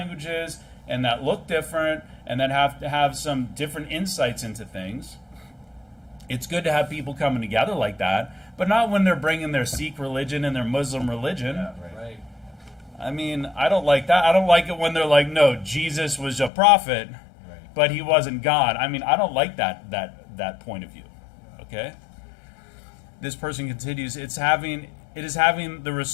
and that look different and that have to have some different insights into things. It's good to have people coming together like that, but not when they're bringing their Sikh religion and their Muslim religion. Yeah, right. I don't like that. I don't like it when they're like, no, Jesus was a prophet, right, but he wasn't God. I don't like that point of view. Okay? This person continues, it is having the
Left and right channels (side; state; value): right; drops out; at 16.5 s